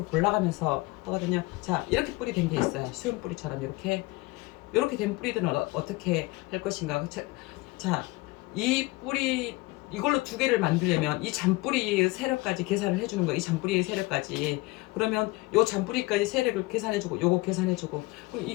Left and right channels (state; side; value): quieter; right; 22.5 dB